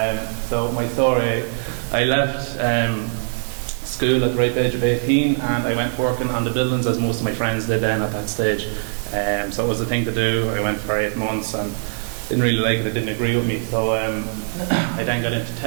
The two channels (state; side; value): silent; left; digital silence